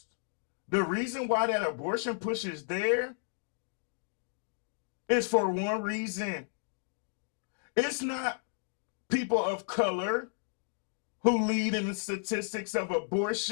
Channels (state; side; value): silent; right; digital silence